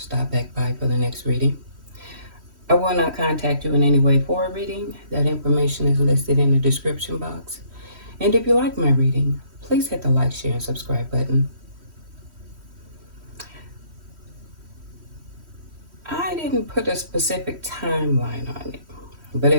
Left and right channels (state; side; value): late; left; 3.1 ms